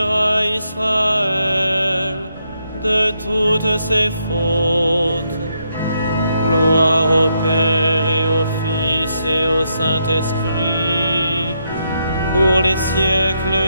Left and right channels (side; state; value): both; inverted; correlation -0.78